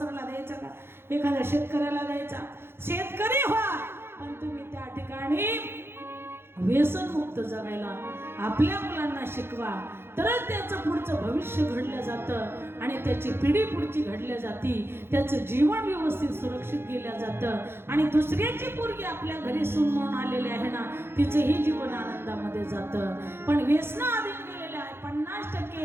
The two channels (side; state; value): left; late; 0.11 ms